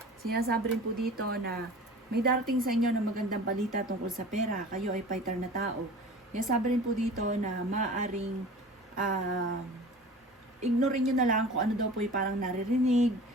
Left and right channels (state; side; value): normal; both; correlation 0.41